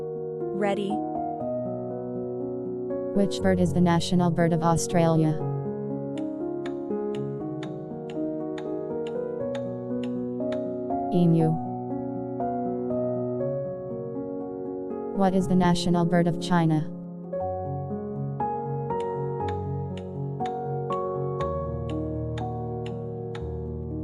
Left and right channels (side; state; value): both; identical; correlation 1.00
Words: Ready? Which bird is the national bird of Australia? Emu. What is the national bird of China?